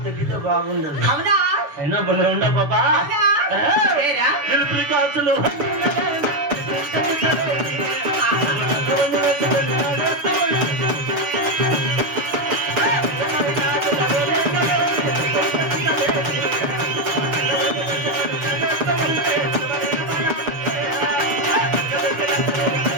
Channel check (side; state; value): left; late; 6.9 ms